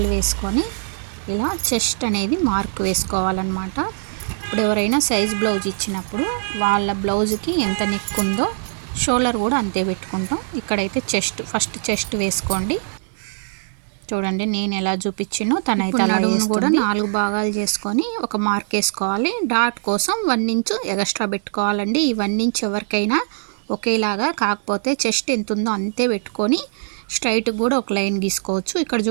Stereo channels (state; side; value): silent; left; digital silence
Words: వేసుకొని ఇలా చెస్ట్ అనేది మార్క్ వేసుకోవాలన్నమాట. ఇప్పుడు ఎవరైనా సైజ్ బ్లౌజ్ ఇచ్చినప్పుడు వాళ్ళ బ్లౌజ్కి ఎంత నెక్ ఉందో షోల్డర్ కూడా అంతే పెట్టుకుంటాం. ఇక్కడైతే ఫస్ట్ చెస్ట్ వేసుకోండి. చూడండి నేను ఎలా చూపించినో తనైతే నడుమును కూడా 4 భాగాలు చేసుకొని ఒక మార్క్ వేసుకోవాలి. డాట్ కోసం 1 ఇంచ్ ఎక్స్ట్రా పెట్టుకోవాలండి. ఈ 1 ఇంచ్ ఎవరికైనా ఒకేలాగా, కాకపోతే చెస్ట్ ఎంత ఉందో అంతే పెట్టుకొని స్ట్రైట్ కూడా ఒక లైన్ గీసుకోవచ్చు. ఇక్కడ